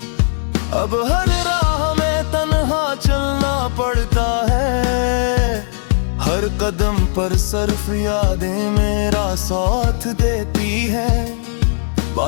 अब हर राह में तन्हा चलना पड़ता है, हर कदम पर सिर्फ यादें मेरा साथ देती है।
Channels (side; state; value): right; silent; digital silence